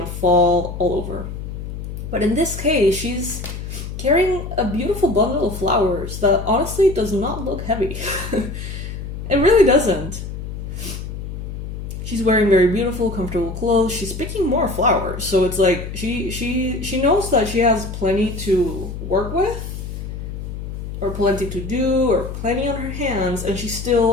fall all over. But in this case, she's carrying a beautiful bundle of flowers that honestly does not look heavy. It really doesn't. She's wearing very beautiful, comfortable clothes. She's picking more flowers, so it's like she knows that she has plenty to work with, or plenty to do, or plenty on her hands, and she's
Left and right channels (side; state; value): left; noise; hum, 8 dB below the sound